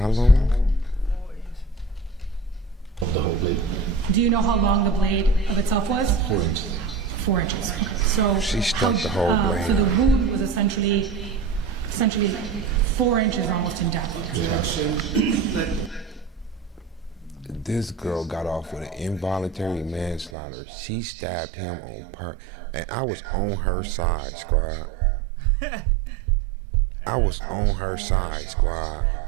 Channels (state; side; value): drops out; left; at 20.3 s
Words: long? 4 inches. Of the whole blade. Do you know how long the blade of itself was? 4 inches. 4 inches. Okay. So She stuck the whole blade. So the wound was essentially 4 inches almost in depth. This girl got off with an involuntary manslaughter. She stabbed him on purpose, and I was on her side, squad. I was on her side, squad.